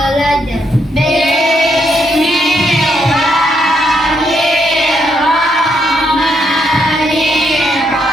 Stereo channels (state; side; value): normal; both; correlation 0.76